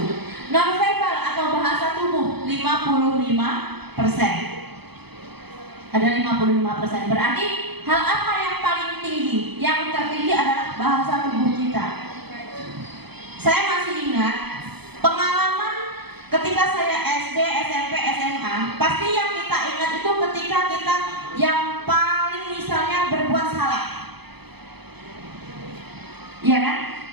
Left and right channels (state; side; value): late; left; 0.98 ms